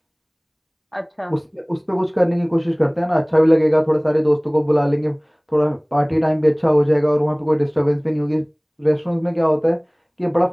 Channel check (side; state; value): both; identical; correlation 1.00